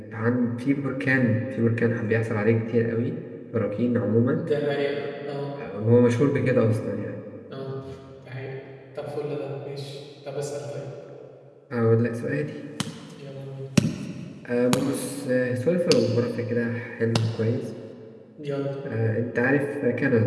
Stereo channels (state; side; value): identical; both; correlation 1.00